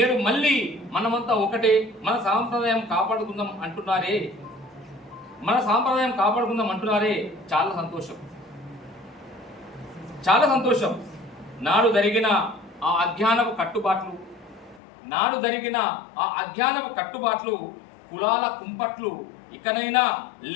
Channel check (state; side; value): drops out; right; at 14.8 s